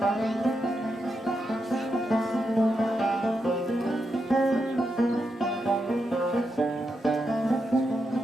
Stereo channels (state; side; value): normal; both; correlation 0.85